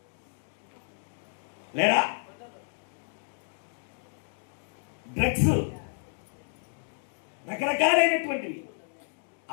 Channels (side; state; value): right; silent; digital silence